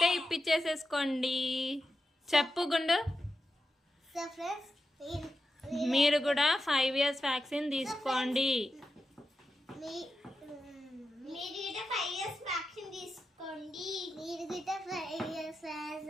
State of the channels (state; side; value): normal; both; correlation 0.89